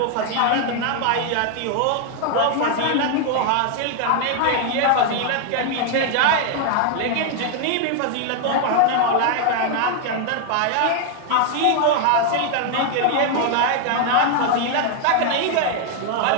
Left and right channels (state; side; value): different; both; correlation 0.00